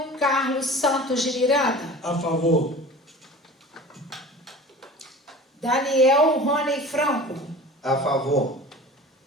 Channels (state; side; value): normal; both; correlation 0.39